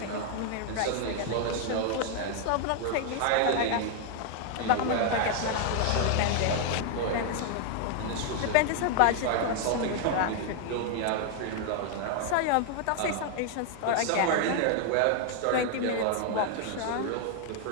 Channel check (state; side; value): different; both; correlation 0.00